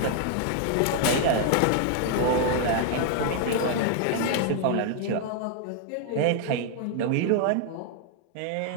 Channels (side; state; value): both; different; correlation 0.00